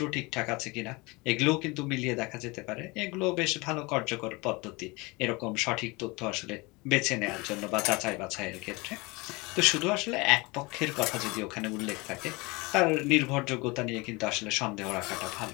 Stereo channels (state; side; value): quieter; right; 25.3 dB